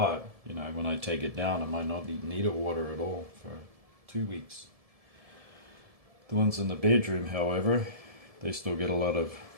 you know, when I take it down, I might not need water at all for 2 weeks. The ones in the bedroom, however, they still get a lot of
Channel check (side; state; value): left; late; 1.7 ms